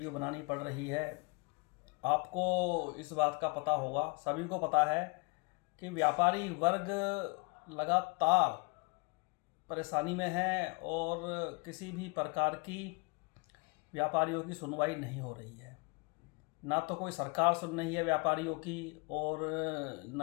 बनानी पड़ रही है। आपको इस बात का पता होगा, सभी को पता है कि व्यापारी वर्ग लगातार परेशानी में है और किसी भी प्रकार की व्यापारियों की सुनवाई नहीं हो रही है। ना तो कोई सरकार सुन रही है व्यापारियों की, और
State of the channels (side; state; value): right; quieter; 30.1 dB